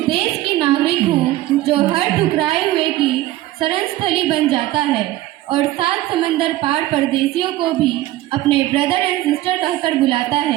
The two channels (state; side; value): quieter; left; 15.7 dB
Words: देश की नागरिक हूँ जो हर ठुकराए हुए की शरण स्थली बन जाता है और 7 समंदर पार परदेशियों को भी अपने ब्रदर एंड सिस्टर कहकर बुलाता